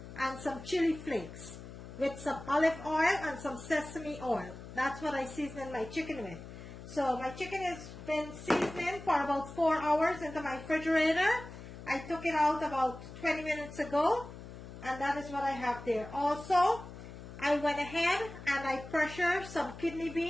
and some chili flakes with some olive oil and some sesame oil. That's what I season my chicken with. So my chicken has been seasoning for about 4 hours into my refrigerator. I took it out about 20 minutes ago, and that is what I have there. Also, I went ahead and I pressured some kidney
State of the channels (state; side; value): noise; left; hum, 13 dB below the sound